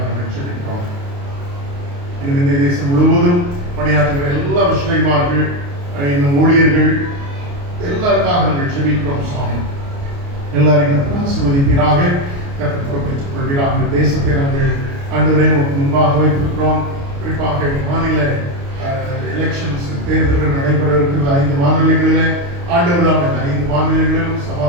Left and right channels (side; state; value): left; late; 29 ms